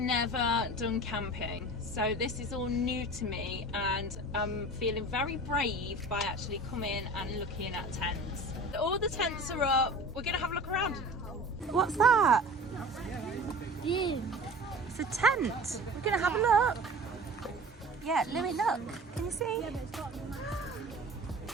done camping, so this is all new to me, and I'm feeling very brave by actually coming and looking at tents. All the tents are up. We're going to have a look around. What's that? It's a tent. We're going to have a look. Yeah, Louis, look. Can you see?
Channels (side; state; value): both; normal; correlation 0.39